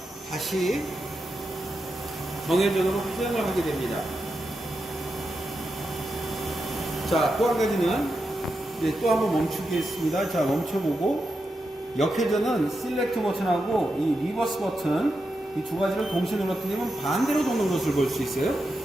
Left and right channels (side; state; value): both; normal; correlation 0.87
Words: 다시 정회전으로 회전을 하게 됩니다. 자, 또 한 가지는 또 한번 멈추겠습니다. 자, 멈춰보고 역회전은 셀렉트 버튼하고 이 리버스 버튼 이 두 가지를 동시에 눌렀더니 반대로 도는 것을 볼 수 있어요.